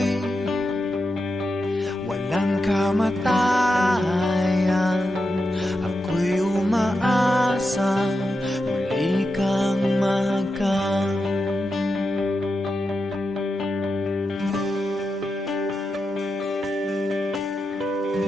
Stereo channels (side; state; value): both; normal; correlation 0.88